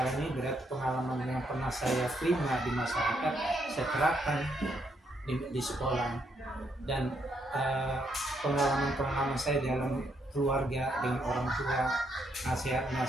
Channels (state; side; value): normal; both; correlation 0.76